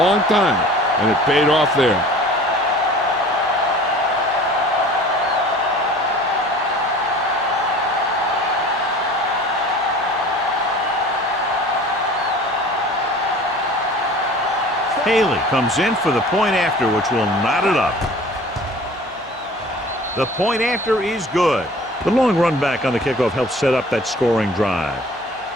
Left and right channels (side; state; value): right; noise; hum, 26 dB below the sound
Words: time, and it paid off there. Haley comes in for the point after, which will knot it up. The point after is good. The long run back on the kickoff helps set up that scoring drive.